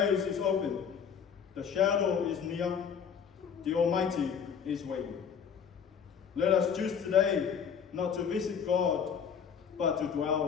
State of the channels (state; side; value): quieter; right; 7.2 dB